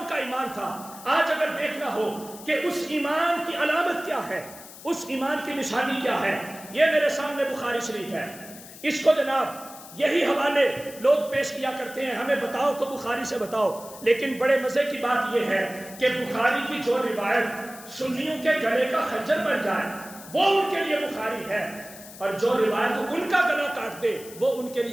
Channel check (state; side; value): noise; left; hiss, 17 dB below the sound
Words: کا ایمان تھا۔ آج اگر دیکھنا ہو کہ اس ایمان کی علامت کیا ہے، اس ایمان کی نشانی کیا ہے، یہ میرے سامنے بخاری شریف ہے۔ اس کو جناب یہی حوالے لوگ پیش کیا کرتے ہیں، ہمیں بتاؤ تو بخاری سے بتاؤ، لیکن بڑے مزے کی بات یہ ہے کہ بخاری کی جو روایت سنیوں کے گلے کا خنجر بن جائے وہ ان کے لیے بخاری ہے، اور جو روایت ان کا گلا کاٹ دے وہ ان کے